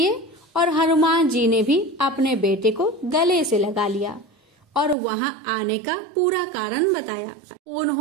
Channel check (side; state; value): left; drops out; at 5.0 s